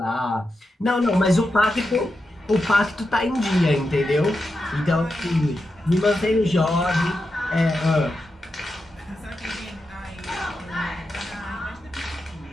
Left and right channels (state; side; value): normal; both; correlation 0.88